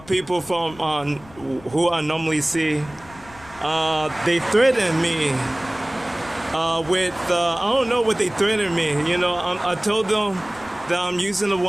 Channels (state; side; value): noise; left; rumble, 22 dB below the sound